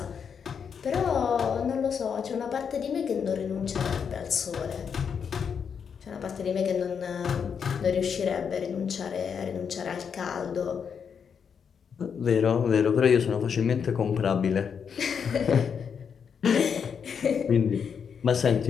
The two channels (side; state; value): right; quieter; 6.9 dB